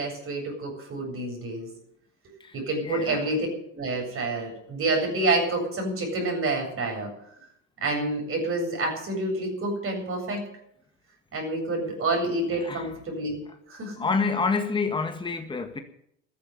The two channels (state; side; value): normal; both; correlation 0.05